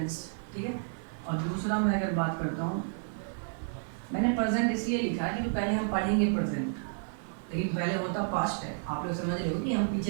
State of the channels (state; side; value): silent; left; 57 dB below the other